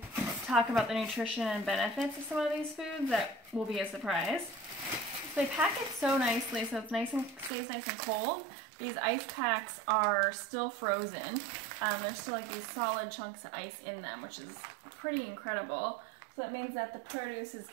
talk about the nutrition and benefits of some of these foods that will be a surprise. So they pack it so nicely so it's nice and stays nice and cold. These ice packs are still frozen. There's still like these solid chunks of ice in them, which is pretty incredible. So that means that the produce is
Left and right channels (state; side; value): drops out; left; at 7.5 s